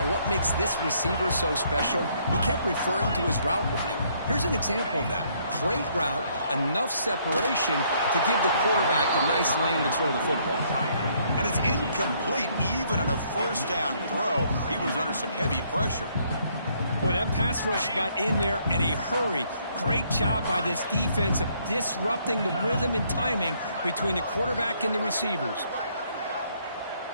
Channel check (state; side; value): inverted; both; correlation -0.68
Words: what makes this receiver so special. He kept referring to his route running. Here's an example of that. Great route, enough separation to give the quarterback a nice lane to throw the football. And it's incomplete. Even on a first down throw, he was under some heavy pressure. Boy, that pass rush got in there in a hurry. Great job by this defense of disrupting the rhythm and timing between the quarterback and the receivers.